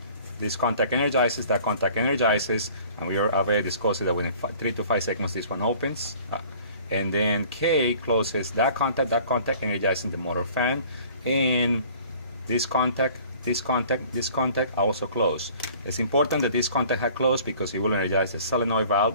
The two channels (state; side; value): inverted; both; correlation -0.51